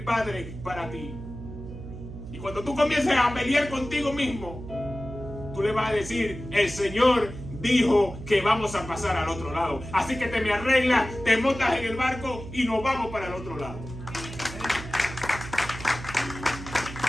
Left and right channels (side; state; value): right; noise; hum, 11 dB below the sound